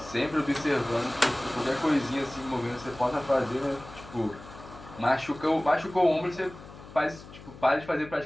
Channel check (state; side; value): noise; left; hum, 17 dB below the sound